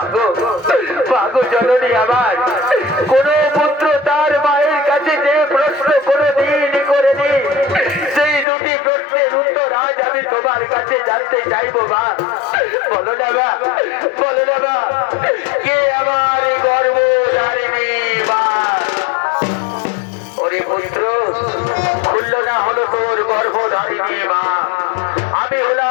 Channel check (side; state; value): right; drops out; at 8.5 s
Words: মাগো জননী আমার, কোন পুত্র তার মায়ের কাছে যে প্রশ্ন কোনদিন করেনি, সেই দুটি প্রশ্নের উত্তর আজ আমি তোমার কাছে জানতে চাইবো মা। বলো না মা, বলো না মা, কে আমার গর্ভধারিণী মা? ওরে পুত্র, খুলল না হলো তোর গর্ভধারিণী মা, আমি